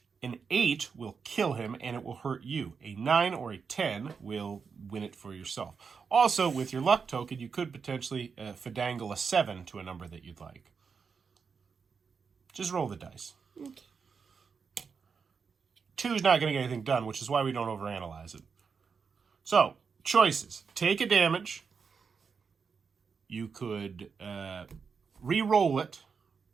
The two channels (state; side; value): quieter; left; 5.7 dB